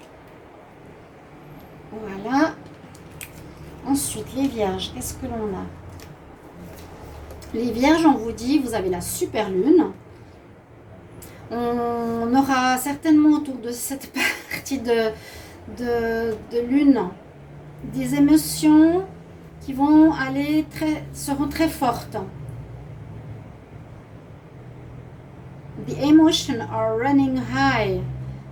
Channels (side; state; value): both; identical; correlation 1.00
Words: Voilà. Ensuite, les vierges, qu'est-ce que l'on a? Les vierges, on vous dit, vous avez la super lune. On aura certainement autour de cette partie de lune des émotions qui vont seront très fortes. The emotions are running high.